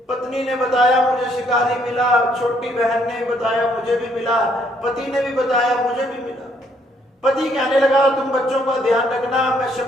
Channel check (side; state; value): both; normal; correlation 0.68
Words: पत्नी ने बताया मुझे शिकारी मिला, छोटी बहन ने बताया मुझे भी मिला, पति ने भी बताया मुझे भी मिला। पति कहने लगा तुम बच्चों का ध्यान रखना, मैं